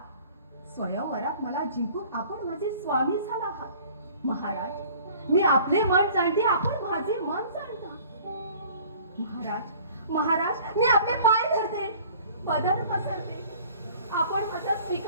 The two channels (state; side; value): inverted; both; correlation -0.50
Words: स्वयंवरात मला जिंकून आपण माझे स्वामी झाला आहात. महाराज, मी आपले मन जाणते, आपण माझे मन जाणता. महाराज, महाराज, मी आपले पाय धरते, पदर पसरते. आपण माझा